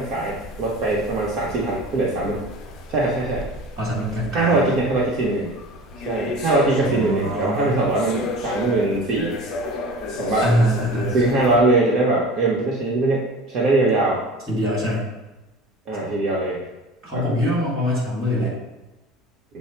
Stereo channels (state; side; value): normal; both; correlation 0.38